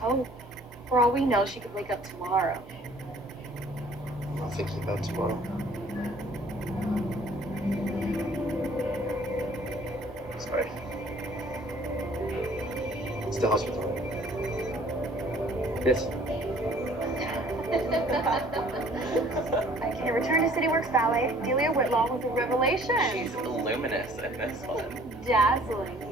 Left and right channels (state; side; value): normal; both; correlation 0.55